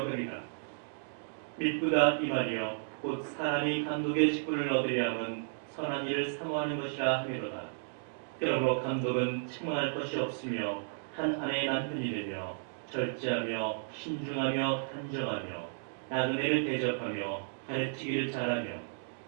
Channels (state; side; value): silent; left; digital silence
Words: 믿부다 이 말이여 곧 사람이 감독의 직분을 얻으려 함은 선한 일을 사모하는 것이라 하미로다. 그러므로 감독은 책망할 것이 없으며 한 아내의 남편이 되며 절제하며 신중하며 단정하며 나그네를 대접하며 가르치기를 잘하며